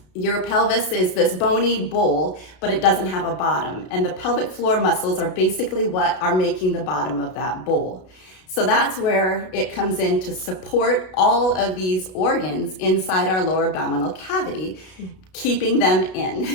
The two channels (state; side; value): late; right; 32 ms